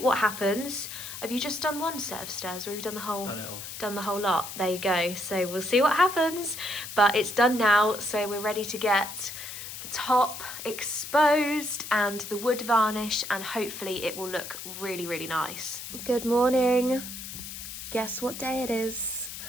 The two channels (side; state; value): left; noise; hiss, 10 dB below the sound